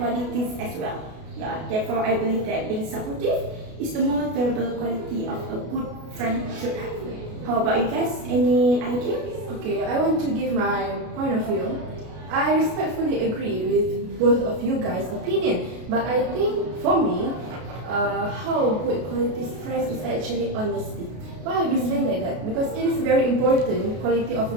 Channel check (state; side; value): late; left; 33 ms